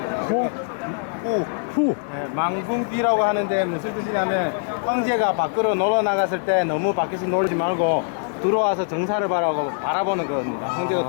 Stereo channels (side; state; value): right; silent; digital silence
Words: 후. 네, 망둥귀라고 하는데 무슨 뜻이냐면 황제가 밖으로 놀러 나갔을 때 너무 밖에서 놀지 말고 들어와서 정사를 바라보는 겁니다. 황제가